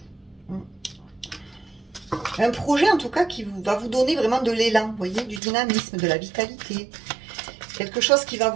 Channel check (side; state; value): left; drops out; at 5.4 s